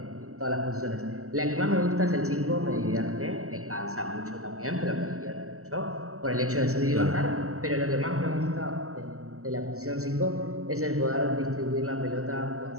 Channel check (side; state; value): left; late; 0.64 ms